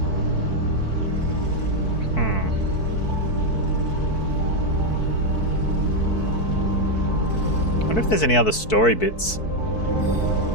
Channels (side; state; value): right; late; 4.6 ms